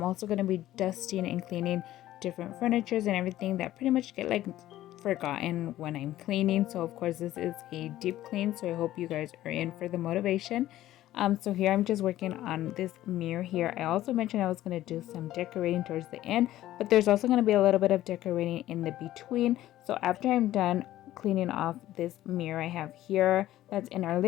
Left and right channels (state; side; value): quieter; right; 14.2 dB